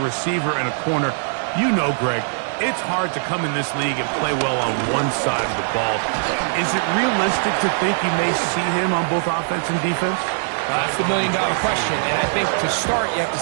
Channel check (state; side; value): silent; left; 59 dB below the other